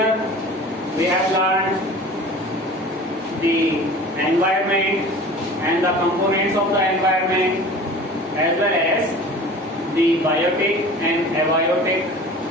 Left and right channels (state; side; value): normal; both; correlation 0.41